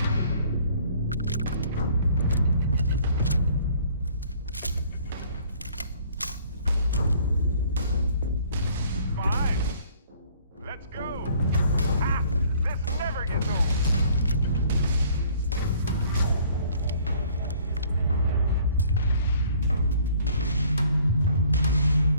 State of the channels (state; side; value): inverted; both; correlation -0.57